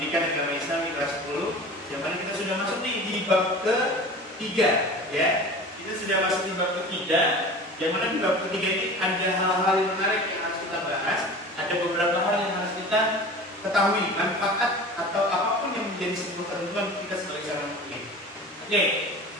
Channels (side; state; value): both; normal; correlation 0.37